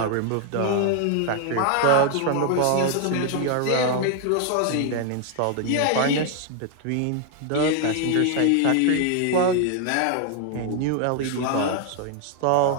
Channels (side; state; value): both; different; correlation 0.00